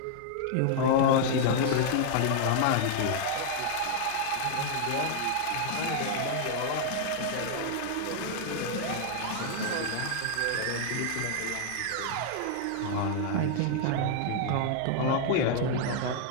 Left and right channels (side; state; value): both; different; correlation -0.01